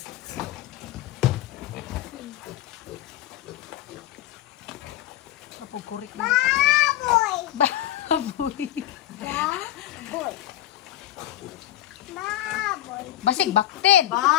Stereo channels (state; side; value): quieter; right; 13.5 dB